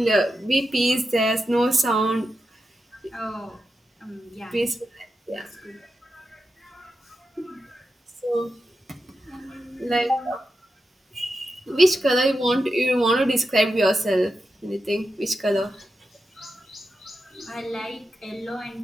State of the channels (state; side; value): normal; both; correlation 0.89